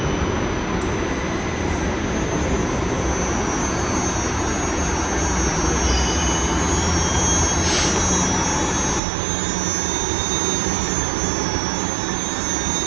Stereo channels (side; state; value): left; drops out; at 9.0 s